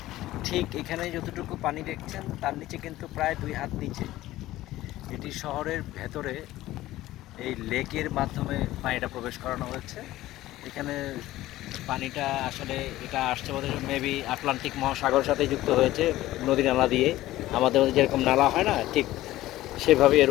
ঠিক এখানে যতটুকু পানি দেখছেন তার নিচে কিন্তু প্রায় 2 হাত নিচে এটি শহরের ভেতরে এই লেকের মাধ্যমে পানিটা প্রবেশ করানো হয়েছে। এখানে পানিটা আসলে এটা আসছে বোধ হয় মেবি আটলান্টিক মহাসাগরের সাথে যুক্ত হয়েছে নদী নালা দিয়ে। আমাদের মধ্যে যেরকম নালা হয় না, ঠিক সেভাবে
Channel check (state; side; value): quieter; right; 15.8 dB